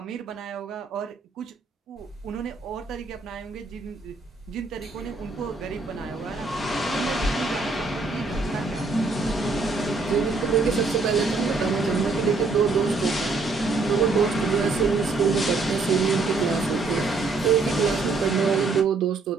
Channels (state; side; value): quieter; left; 3.8 dB